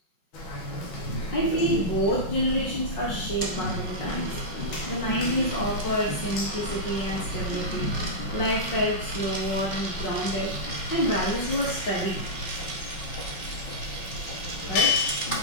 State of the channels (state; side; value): late; right; 5.4 ms